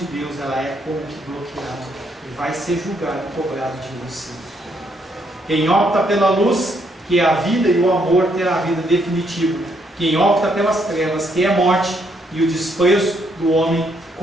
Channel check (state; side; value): normal; both; correlation 0.73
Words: Deus, ela é como que bloqueada e vai ser julgado e cobrado de você. Quem opta pela luz, que é a vida e o amor, terá a vida definitiva. Quem opta pelas trevas, que é a morte e o desprezo do homem,